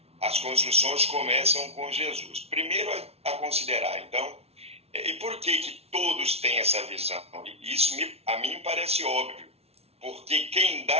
as construções começam com Jesus. Primeiro a considerar, então, e por que todos têm essa visão? Isso a mim parece óbvio, porque quem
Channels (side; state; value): left; late; 0.30 ms